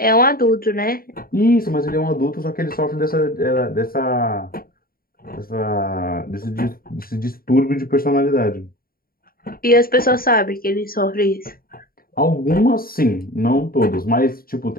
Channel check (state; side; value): late; right; 0.43 ms